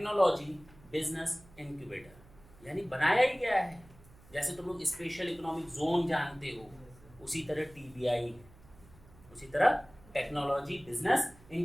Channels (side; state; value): right; noise; hum, 24 dB below the sound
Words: बिजनेस इंक्यूबेटर। यानी बनाया ही गया है। जैसे तुम लोग स्पेशल इकोनॉमिक जोन जानते हो, उसी तरह टीबीआई है, उसी तरह टेक्नोलॉजी बिजनेस